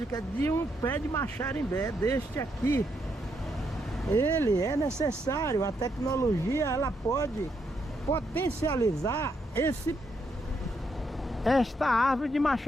de um pé de Maxarimbé deste aqui. Ele é necessário, a tecnologia ela pode potencializar esta árvore de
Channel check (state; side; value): normal; both; correlation 0.78